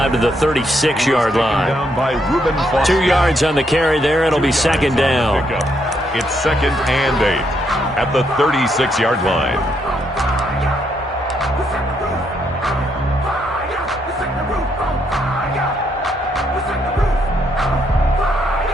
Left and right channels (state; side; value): normal; both; correlation 0.75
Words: to the 36-yard line. 2 yards on the carry there. It'll be 2nd down. It's 2nd and 8 at the 36-yard line.